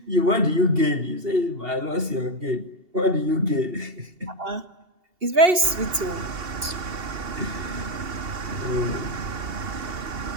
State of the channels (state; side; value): late; left; 2.8 ms